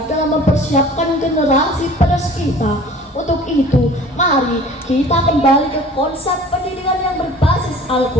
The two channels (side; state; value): both; normal; correlation 0.47